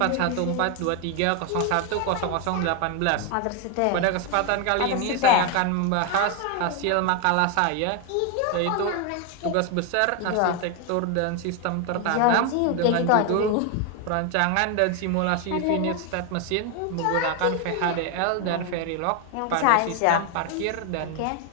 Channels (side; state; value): both; different; correlation 0.01